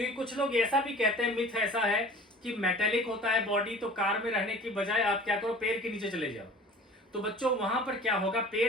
कुछ लोग ऐसा भी कहते हैं, मिथ ऐसा है कि मेटेलिक होता है बॉडी, तो कार में रहने की बजाय आप क्या करो, पेड़ के नीचे चले जाओ। तो बच्चों, वहां पर क्या होगा,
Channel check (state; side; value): normal; both; correlation 0.44